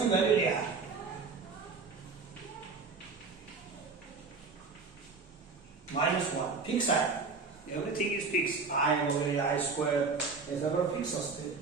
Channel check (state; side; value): quieter; left; 4.5 dB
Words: व्हॅल्यू लिहा. -1 फिक्स आहे. Everything is fix. आय वगैरे आय स्क्वेअर हे सगळं फिक्स असते.